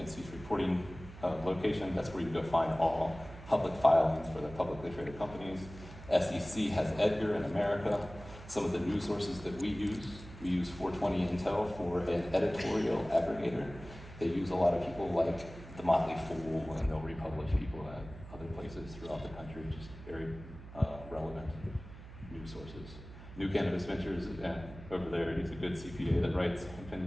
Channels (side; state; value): right; noise; hum, 15 dB below the sound